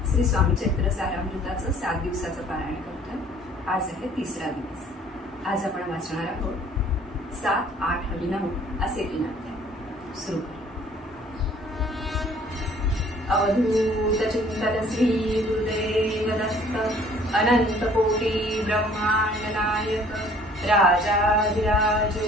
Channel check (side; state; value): both; normal; correlation 0.55